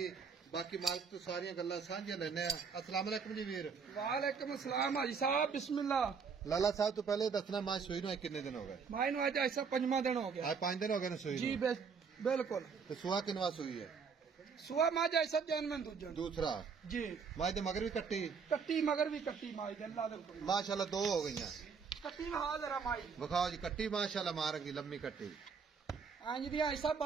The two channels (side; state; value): left; quieter; 5.8 dB